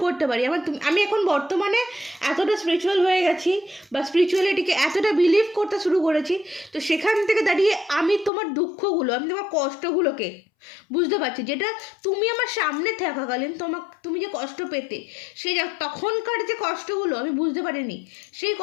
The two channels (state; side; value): drops out; right; at 8.3 s